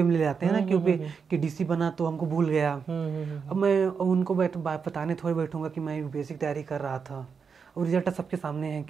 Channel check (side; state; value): left; quieter; 5.9 dB